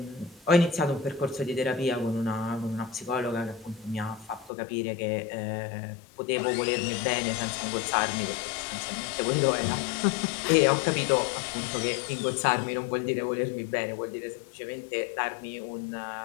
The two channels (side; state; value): right; drops out; at 4.5 s